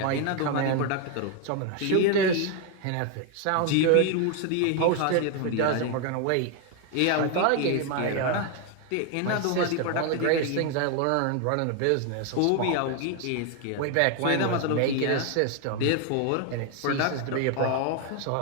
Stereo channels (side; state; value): both; different; correlation 0.01